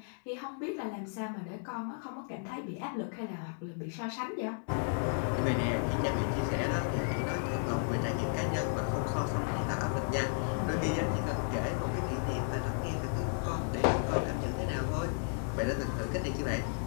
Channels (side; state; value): right; silent; digital silence